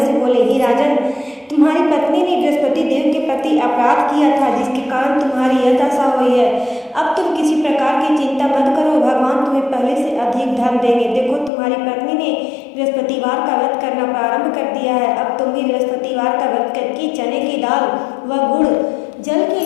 से बोले, हे राजन, तुम्हारी पत्नी ने बृहस्पति देव के प्रति अपराध किया था, जिसके कारण तुम्हारी यह दशा हुई है। अब तुम किसी प्रकार की चिंता मत करो, भगवान तुम्हें पहले से अधिक धन देंगे। देखो, तुम्हारी पत्नी ने बृहस्पतिवार का व्रत करना प्रारंभ कर दिया है। अब तुम भी बृहस्पतिवार का व्रत करके चने की दाल व गुड़ जल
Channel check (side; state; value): right; drops out; at 11.5 s